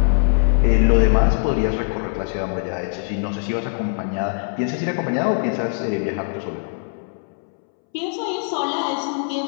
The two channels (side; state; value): right; silent; 65 dB below the other